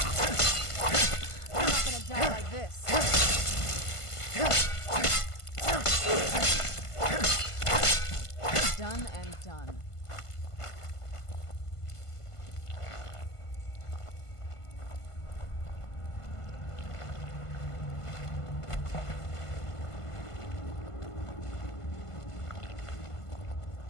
Die like this. Done and done.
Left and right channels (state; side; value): late; right; 1.5 ms